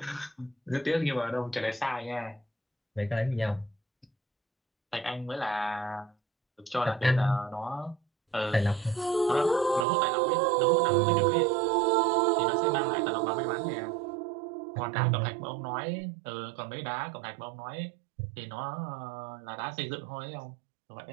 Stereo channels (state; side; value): drops out; left; at 9.9 s